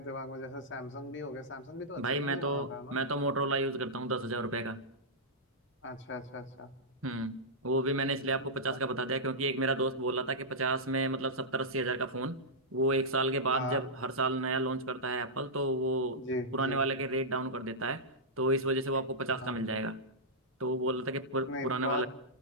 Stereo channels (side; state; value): both; normal; correlation -0.11